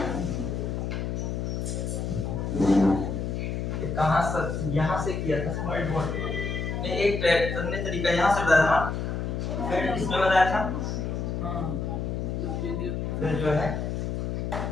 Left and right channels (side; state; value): left; noise; hum, 2 dB below the sound